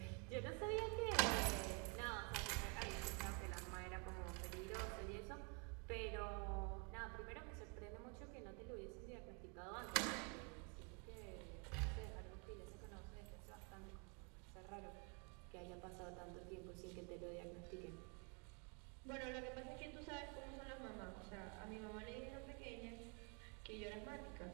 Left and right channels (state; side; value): quieter; left; 33.6 dB